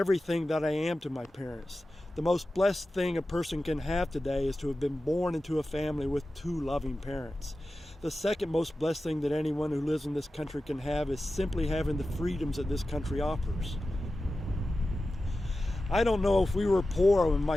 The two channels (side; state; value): both; normal; correlation 0.94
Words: that I am to my parents. The most blessed thing a person can have today is to have been born into a family with two loving parents. The second most blessed thing that anyone who lives in this country can have is simply having the freedoms that this country offers. I don't know if we were poor when